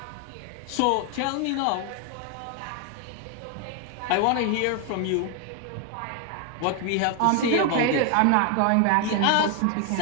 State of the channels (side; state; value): both; different; correlation 0.01